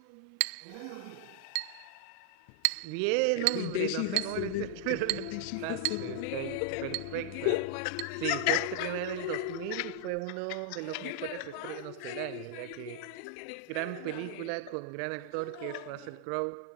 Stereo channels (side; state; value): both; different; correlation 0.00